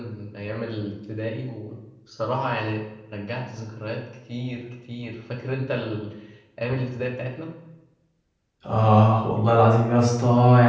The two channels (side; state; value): both; identical; correlation 1.00